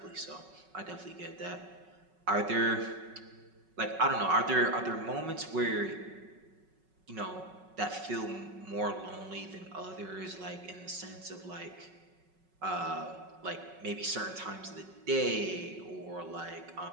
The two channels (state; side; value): late; left; 5.4 ms